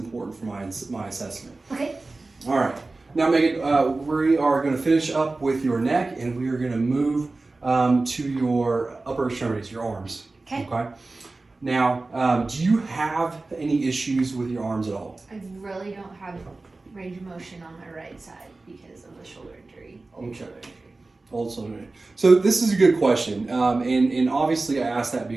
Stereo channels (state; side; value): quieter; left; 3.4 dB